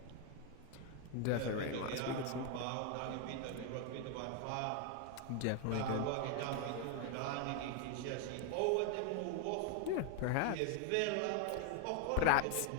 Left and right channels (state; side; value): different; both; correlation 0.01